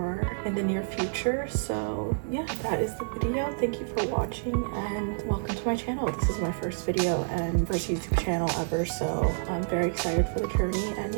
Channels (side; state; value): left; silent; digital silence